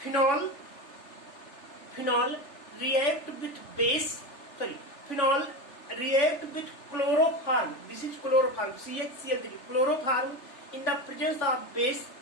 phenol react with phenol react with chloroform, this is chloroform CHCl3 chloroform in the presence of base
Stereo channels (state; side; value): late; right; 3.4 ms